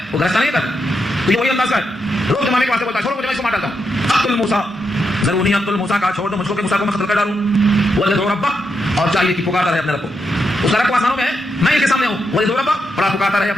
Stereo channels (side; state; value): both; normal; correlation 0.83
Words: وہ گرستا نہیں کرتا, تو یہ وہی انداز کا ہے, روک جمانے کے واسطے بولتا ہے, چھوڑو مجھے, میں اس کو مار ڈالتا ہوں. اقتل موسیٰ, ضروری اقتل موسیٰ, کا چھوڑ دو مجھ کو کہ موسیٰ کو میں قتل کر ڈالوں. وَلَدُ رَبَّهُ, اور چاہیے کہ پکارتا رہے اپنے رب کو, اس کا رب کو آسانوں میں ہے, میں اس کے سامنے ہوں. وَلَدُ رَبَّهُ, اور پکارتا رہے